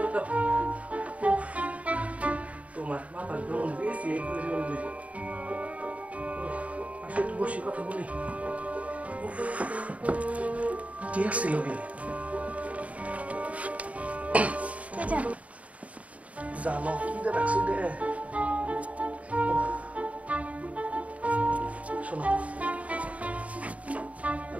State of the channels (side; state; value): left; late; 0.067 ms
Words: দাও। উফ, তোমার মাথা কেমন বেশি এই করে বললে। আসলে একটু বসে কথা বলি। উফ, কে আসছিল গেলে? কে জানো? জানো কি রাখছি রে? উফ, শোনো,